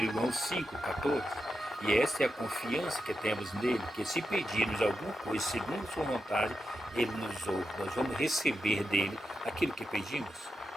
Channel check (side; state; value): both; normal; correlation 0.87